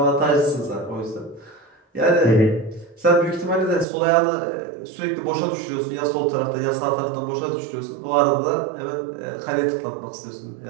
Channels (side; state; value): left; drops out; at 3.9 s